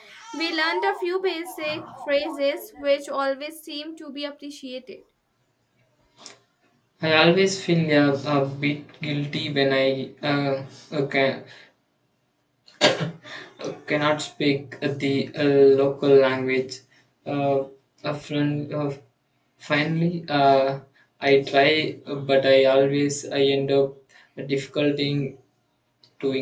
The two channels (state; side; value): identical; both; correlation 1.00